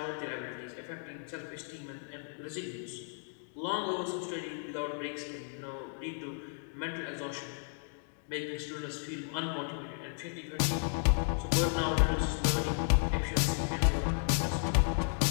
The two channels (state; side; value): silent; right; 55 dB below the other